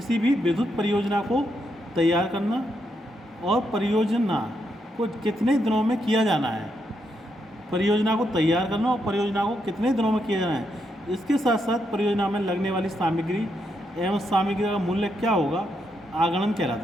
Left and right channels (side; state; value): both; normal; correlation 0.80